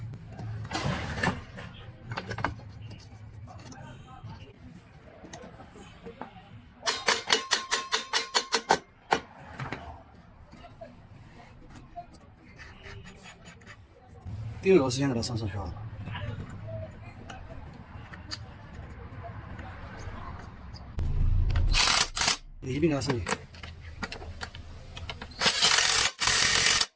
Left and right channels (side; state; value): both; identical; correlation 1.00